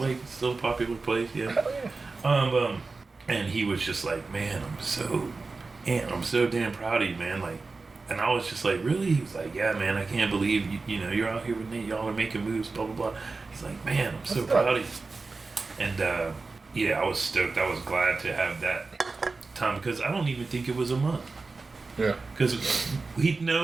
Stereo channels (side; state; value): left; quieter; 3.9 dB